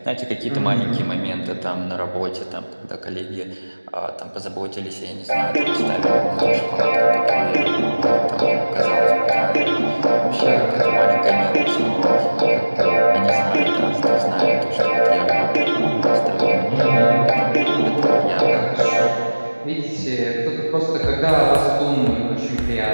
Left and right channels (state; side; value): inverted; both; correlation -1.00